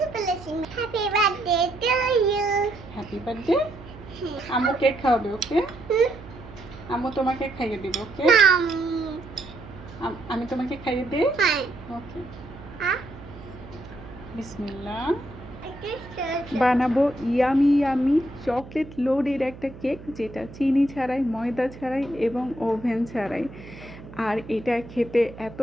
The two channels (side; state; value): right; noise; hum, 16 dB below the sound